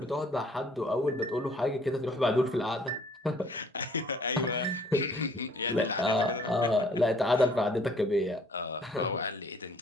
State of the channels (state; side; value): normal; both; correlation 0.58